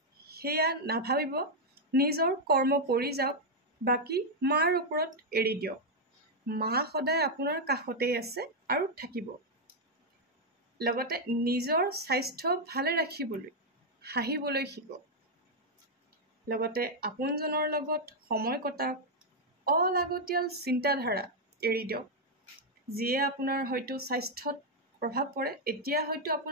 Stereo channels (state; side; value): normal; both; correlation 0.00